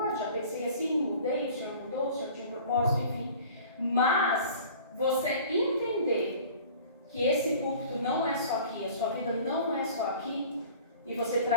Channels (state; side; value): inverted; both; correlation -0.45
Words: já pensei assim, mudei, o Senhor mudou, o Senhor tinha um propósito, enfim. Mas você entender que esse púlpito não é só aqui, a sua vida não é só aqui, e você